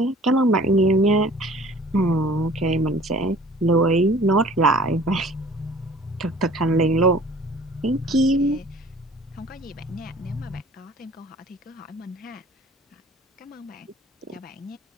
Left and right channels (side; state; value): both; normal; correlation 0.50